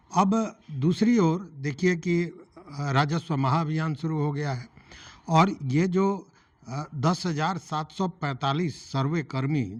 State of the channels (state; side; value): identical; both; correlation 1.00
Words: अब दूसरी ओर देखिए कि राजस्व महाअभियान शुरू हो गया है और ये जो 10,745 सर्वे कर्मी